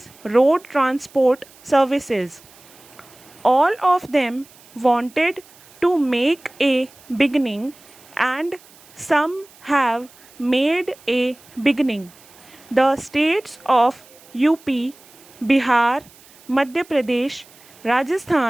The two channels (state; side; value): noise; right; hiss, 25 dB below the sound